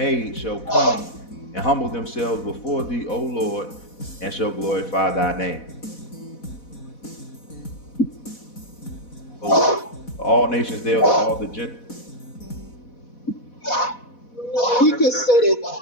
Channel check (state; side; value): late; right; 4.1 ms